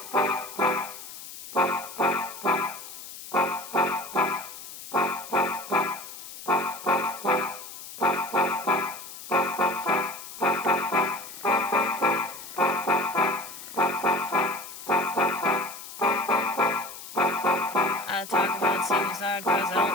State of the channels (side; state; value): left; noise; hiss, 13 dB below the sound